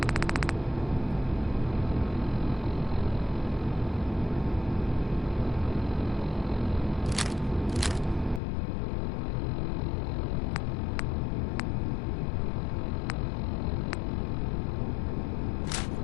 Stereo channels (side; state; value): right; drops out; at 8.4 s